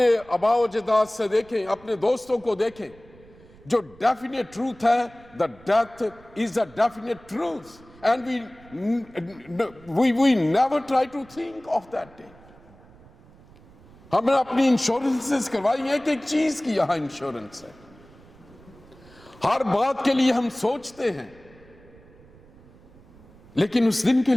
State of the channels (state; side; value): noise; right; rumble, 24 dB below the sound